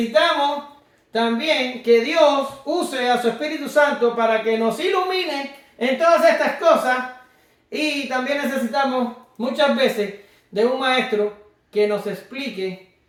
también que Dios use a su Espíritu Santo para que nos ilumine en todas estas cosas, y también necesitamos muchas veces de un maestro que nos explique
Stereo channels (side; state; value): both; identical; correlation 1.00